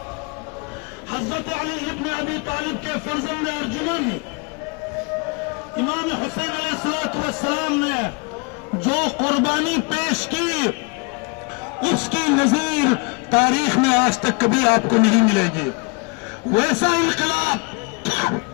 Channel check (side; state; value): right; quieter; 31.3 dB